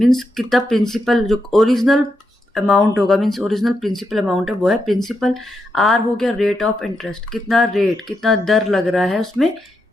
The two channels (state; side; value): normal; both; correlation 0.83